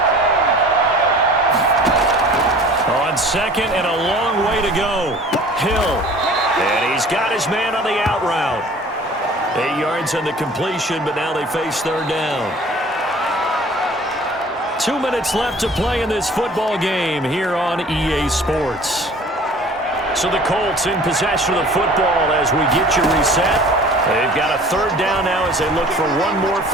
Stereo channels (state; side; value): normal; both; correlation 0.47